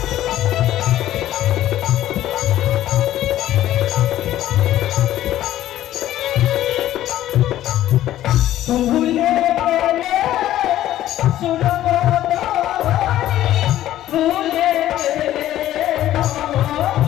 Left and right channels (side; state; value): right; quieter; 13.3 dB